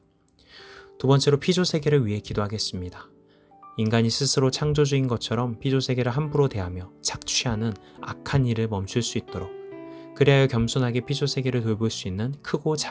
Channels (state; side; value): identical; both; correlation 1.00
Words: 두 번째로 피조세계를 위해 기도하겠습니다. 인간이 스스로 창조주인 것처럼 피조세계를 함부로 대하며 착취하는 악한 일을 멈출 수 있도록 그리하여 겸손하게 피조세계를 돌볼 수 있는 크고